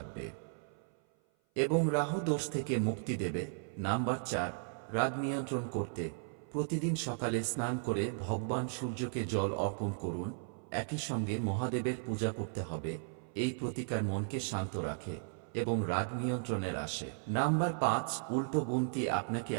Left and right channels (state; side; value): silent; left; 54 dB below the other